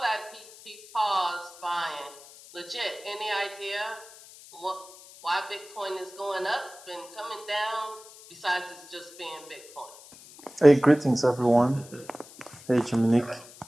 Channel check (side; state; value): left; noise; hiss, 20 dB below the sound